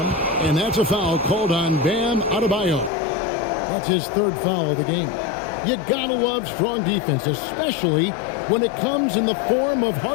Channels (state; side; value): drops out; right; at 2.9 s